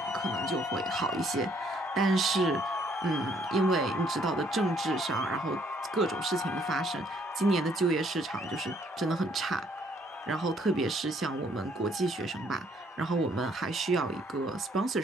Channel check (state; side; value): normal; both; correlation 0.66